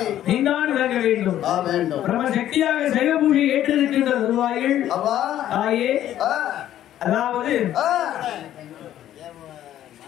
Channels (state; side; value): quieter; right; 12.0 dB